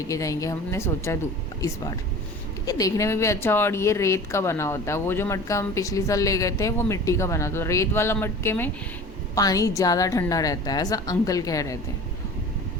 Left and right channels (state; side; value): normal; both; correlation 0.39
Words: जाएंगे हमने सोचा इस बार। ये देखने में भी अच्छा, और ये रेत का बना होता है। वो जो मटका हम पिछली साल ले गए थे वो मिट्टी का बना था। रेत वाला मटके में पानी ज़्यादा ठंडा रहता है, ऐसा अंकल कह रहे थे।